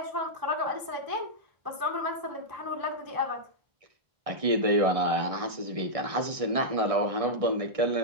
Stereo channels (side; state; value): left; late; 1.6 ms